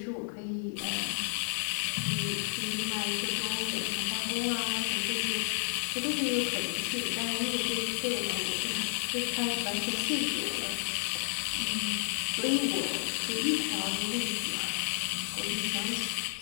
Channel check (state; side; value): silent; right; 57 dB below the other